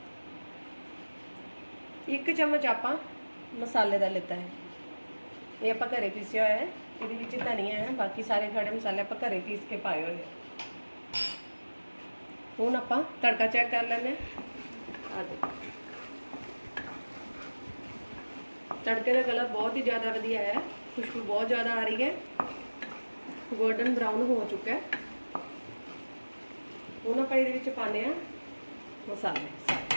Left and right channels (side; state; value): both; inverted; correlation -1.00